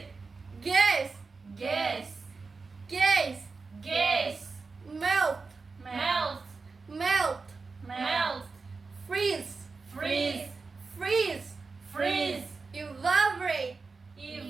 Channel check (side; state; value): left; quieter; 4.3 dB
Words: gas, Gas. gas, Gas. melt, Melt. melt, Melt. freeze, Freeze. freeze, Freeze. evaporate,